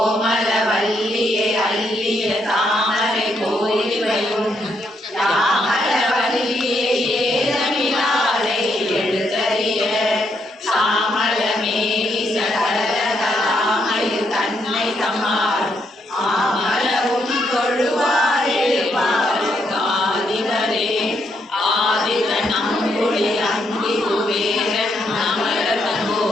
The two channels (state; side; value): normal; both; correlation 0.76